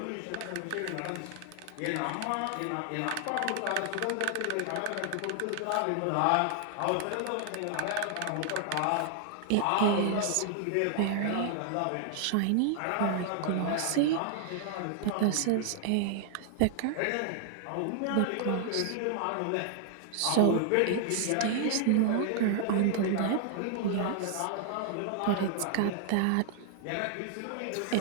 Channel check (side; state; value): both; different; correlation 0.00